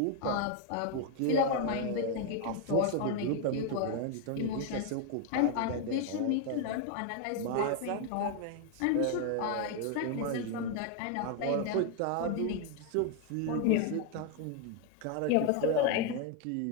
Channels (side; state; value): both; different; correlation 0.01